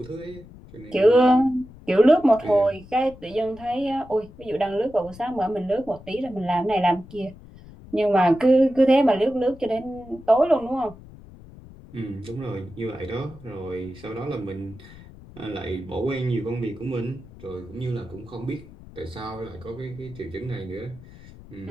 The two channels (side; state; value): left; noise; rumble, 19 dB below the sound